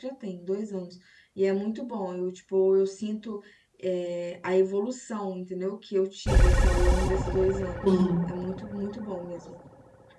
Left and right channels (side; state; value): both; identical; correlation 1.00